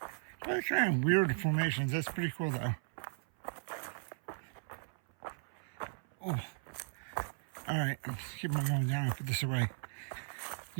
But kind of weird formations. That's pretty cool though. Oh. Alright, I'm just keep on going down and put this away.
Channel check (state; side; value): silent; left; 53 dB below the other